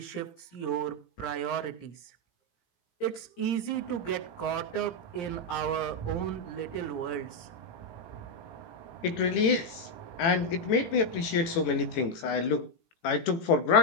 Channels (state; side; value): late; right; 18 ms